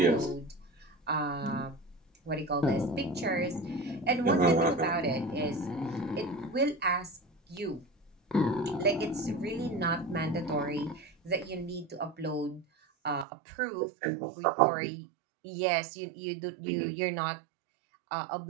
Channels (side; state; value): left; drops out; at 13.2 s